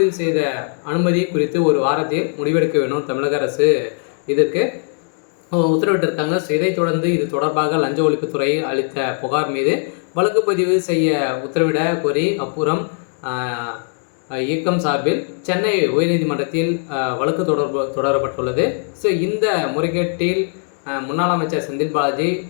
செய்த அனுமதி குறித்து ஒரு வாரத்தில் முடிவெடுக்க வேண்டும் தமிழக அரசு இதற்கு உத்தரவிட்டிருக்காங்க. ஸோ இதைத் தொடர்ந்து இது தொடர்பாக லஞ்ச ஒழிப்புத்துறை அளித்த புகார் மீது வழக்கு பதிவு செய்ய உத்தரவிட கோரி அப்புறம் இயக்கம் சார்பில் சென்னை உயர்நீதிமன்றத்தில் வழக்கு தொடரப்பட்டுள்ளது. ஸோ இந்த முறைகேட்டில் முன்னாள் அமைச்சர் செந்தில் பாலாஜி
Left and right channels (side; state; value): right; silent; 57 dB below the other